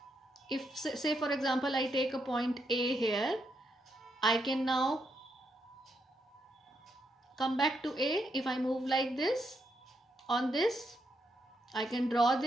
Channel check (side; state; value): both; normal; correlation 0.80